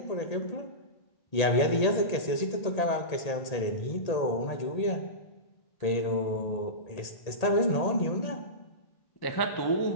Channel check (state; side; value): late; right; 1.8 ms